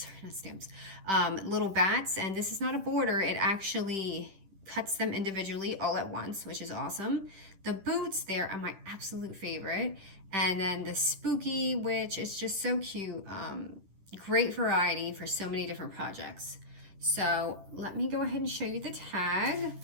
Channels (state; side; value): late; left; 10 ms